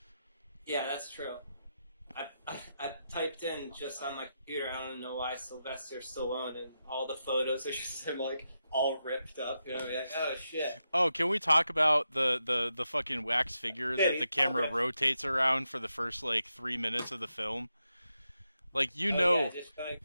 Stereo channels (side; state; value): both; inverted; correlation -0.86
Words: Yeah, that's true. I typed in just on my computer, I don't know why, Sylvester Stallone, and all the photos are just him, like, all ripped up, like, oh, shit. Oh, can we talk about the fucking wax figure that the camera rotates around for the first, like, 3 minutes of the film? Like, yeah,